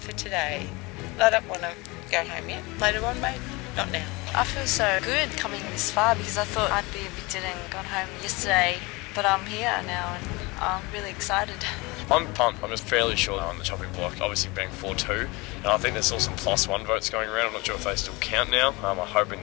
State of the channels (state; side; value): quieter; right; 24.8 dB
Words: today. I don't want to go home yet. Later on, maybe. Not now. I feel so good coming this far because I thought I'd be evicted and gone home yesterday, but I'm here now and I'm really excited. I'm pumped. I'm just fairly sure they're on the chopping block, obviously being 4-2, and I think there's still some +1 votes going around. I'm not sure if they still count now. I'm hoping